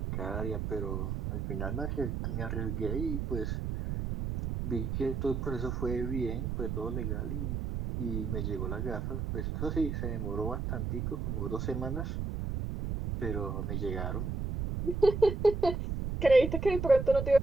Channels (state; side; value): noise; right; rumble, 2 dB below the sound